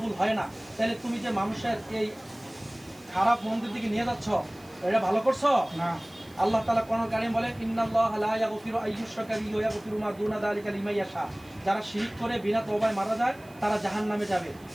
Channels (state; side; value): noise; right; hiss, 26 dB below the sound